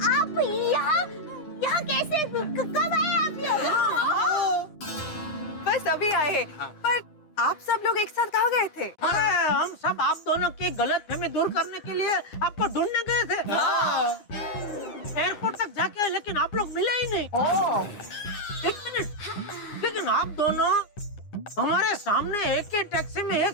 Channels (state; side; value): late; right; 9.8 ms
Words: यहाँ कैसे, कब आए आप लोग? बस अभी आए हैं। पर आप सब लोग एक साथ कहाँ गए थे? अरे हम सब आप दोनों की गलतफहमी दूर करने के लिए आपको ढूंढने गए थे। एयरपोर्ट तक जाके आए, लेकिन आप लोग मिले ही नहीं। एक मिनट, लेकिन आप दोनों हमारे सामने एक ही टैक्सी में